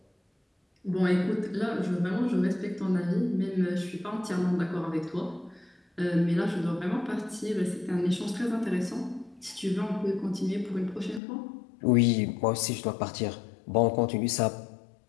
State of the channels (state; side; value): drops out; right; at 11.2 s